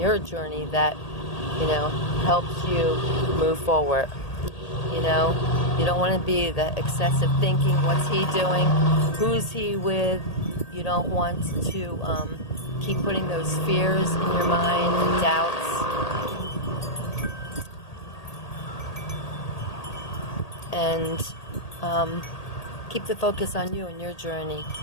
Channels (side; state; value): right; late; 1.8 ms